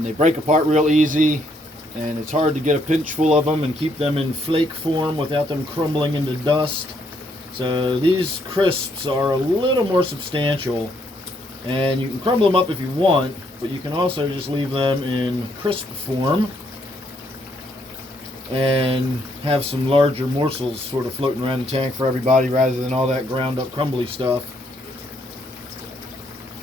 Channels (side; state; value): both; normal; correlation 0.71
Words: they break apart real easy, and it's hard to get a pinch full of them and keep them in flake form without them crumbling into dust. So these crisps are a little more substantial, and you can crumble them up if you want, but you can also just leave them in crisp form and have some larger morsels sort of floating around the tank for everybody rather than all that ground up crumbly stuff.